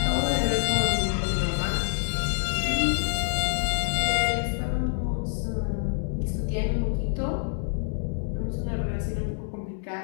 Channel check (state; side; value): silent; right; digital silence